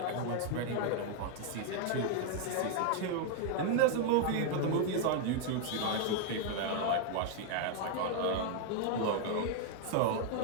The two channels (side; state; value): both; different; correlation 0.00